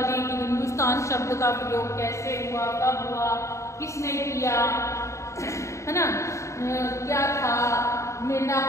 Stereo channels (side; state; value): right; late; 0.14 ms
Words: की हिंदुस्तान शब्द का प्रयोग कैसे हुआ, कब हुआ, किसने किया, है ना। क्या था,